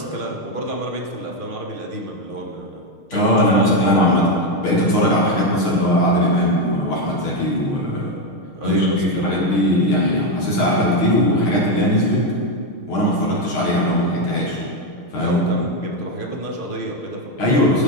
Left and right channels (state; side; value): late; right; 6.5 ms